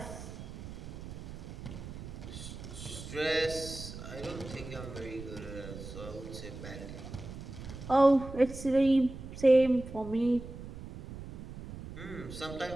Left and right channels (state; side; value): noise; right; rumble, 11 dB below the sound